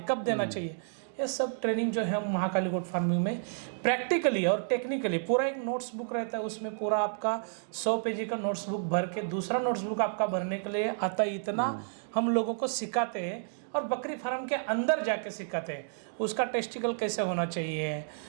कब देना चाहिए, ये सब ट्रेनिंग जो है हम महाकाली गोट फार्मिंग में प्रैक्टिकली और टेक्निकली, पूरा एक नोट्स बुक रहता है, उसमें पूरा आपका 100 पेजी का नोट्स बुक भर के दूसरा नोट्स बुक आपका भरने के लिए आता है। इतना हम लोगों को सिखाते हैं और बकरी फार्म के अंदर जाके सिखाते हैं। उसका टेस्टिकल कैसे होना चाहिए,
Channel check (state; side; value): silent; left; digital silence